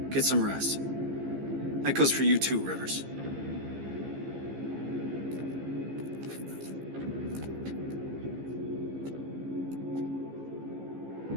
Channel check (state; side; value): late; left; 15 ms